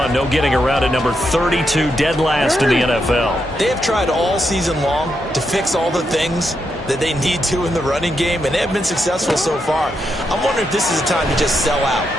No getting around at number 32, dead last in the NFL. They have tried all season long to fix all the things that they need to in the running game, and they have been successful so far. I'm wondering if this is a time to just sell out.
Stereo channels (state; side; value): normal; both; correlation 0.82